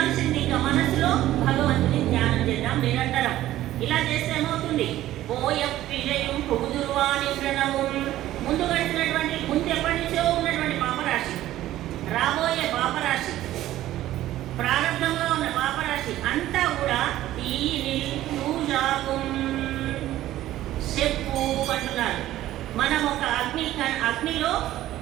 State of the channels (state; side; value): quieter; left; 14.3 dB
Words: మనసులో భగవంతుని ధ్యానం చేద్దాం నిరంతరం. ఇలా చేస్తే ఏమవుతుంది? పోయ విజయం పొగుదురువాని ప్రణవు. ముందు గడిచినటువంటి, ముందు ఎప్పటి నుంచో ఉన్నటువంటి పాపరాశి, రాబోయే పాపరాశి, ప్రారంభంగా ఉన్న పాపరాశి అంతా కూడా ఈ పూజాకు చెప్పు అంటున్నారు. మనం ఒక అగ్నిలో